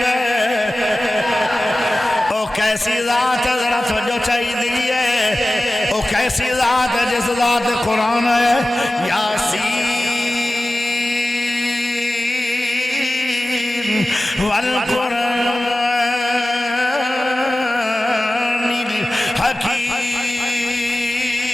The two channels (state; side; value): normal; both; correlation 0.96